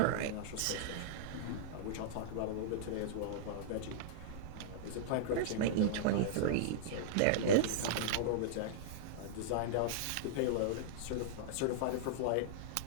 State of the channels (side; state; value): both; different; correlation -0.02